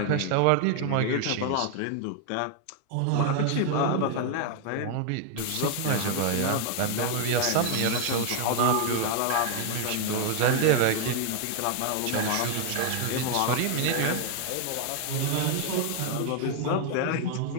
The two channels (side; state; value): both; different; correlation 0.00